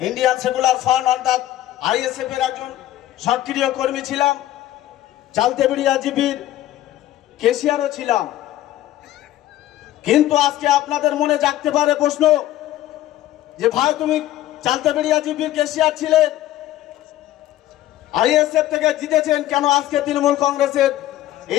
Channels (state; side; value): quieter; right; 14.0 dB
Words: ইন্ডিয়ান সেকুলার ফ্রন্ট অর্থাৎ আইএসএফ এর একজন সক্রিয় কর্মী ছিলাম, চালতেবেড়িয়া জিপির কেশিয়ারও ছিলাম। কিন্তু আজকে আপনাদের মনে জাগতে পারে প্রশ্ন যে ভাই তুমি চালতেবেড়িয়া জিপির কেশিয়ার ছিলেন, আইএসএফ থেকে জিতেছেন, কেন আজকে তৃণমূল কংগ্রেসের